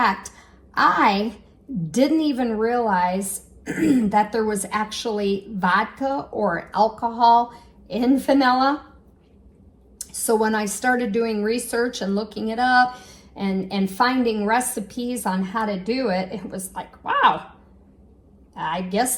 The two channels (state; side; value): identical; both; correlation 1.00